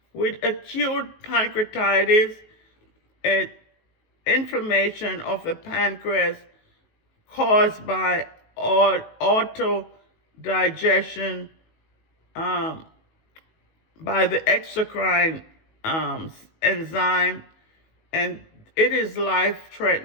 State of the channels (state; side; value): late; right; 19 ms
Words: With acute pancreatitis, inflammation of the pancreas caused by autodigestion by the exocrine enzyme, and it is